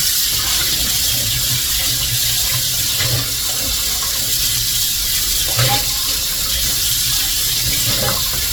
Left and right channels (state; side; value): normal; both; correlation 0.96